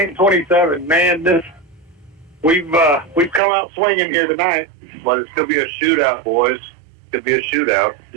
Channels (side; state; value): left; drops out; at 3.4 s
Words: Man, we've come out swinging here tonight. But it's going to be a shootout, boys. Could be a shootout.